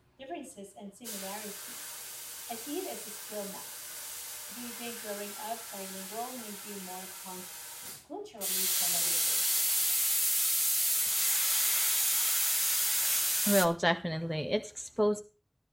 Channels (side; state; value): both; identical; correlation 1.00